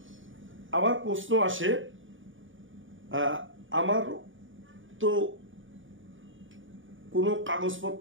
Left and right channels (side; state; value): left; late; 0.57 ms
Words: আবার প্রশ্ন আসে, আমার তো কোনো